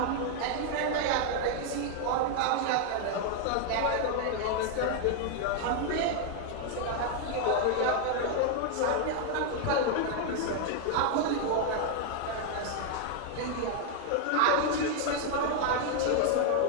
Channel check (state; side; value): different; both; correlation 0.00